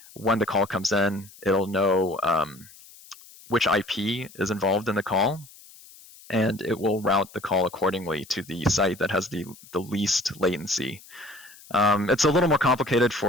when the call comes in, it'll know which IP is involved in the call, and it will route the call accordingly to the site that has the least latency. It's a little more complicated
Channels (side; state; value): left; noise; hiss, 22 dB below the sound